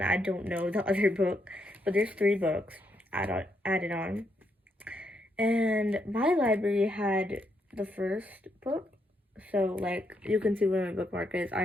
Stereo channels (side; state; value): both; normal; correlation 0.78